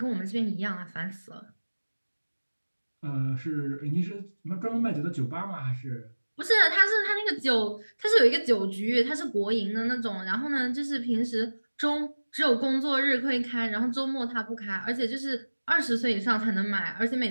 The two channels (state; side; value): inverted; both; correlation -1.00